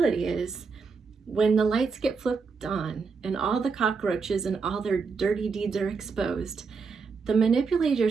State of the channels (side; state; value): left; quieter; 5.0 dB